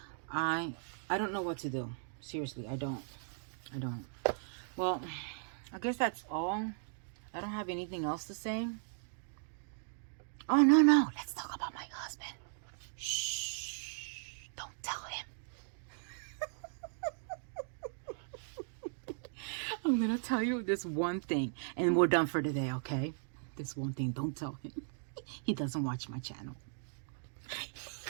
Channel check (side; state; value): left; silent; digital silence